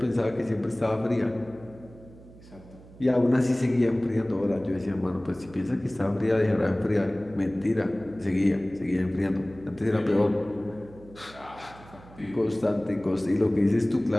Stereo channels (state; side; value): noise; right; hum, 21 dB below the sound